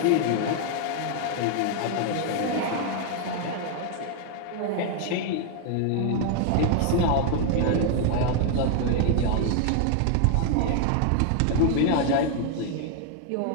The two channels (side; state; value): both; different; correlation 0.00